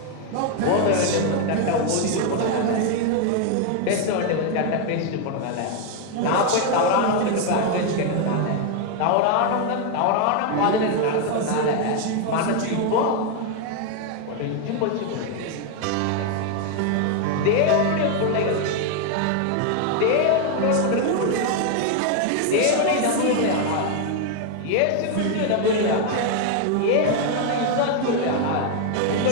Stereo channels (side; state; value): both; different; correlation 0.01